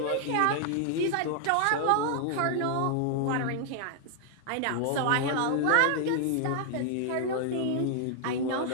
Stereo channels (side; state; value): both; different; correlation 0.00